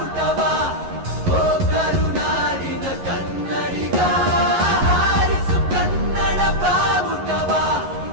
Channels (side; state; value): left; late; 11 ms